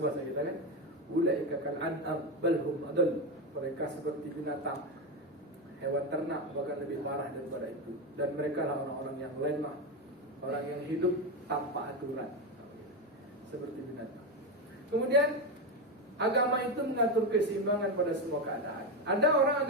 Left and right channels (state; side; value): normal; both; correlation 0.12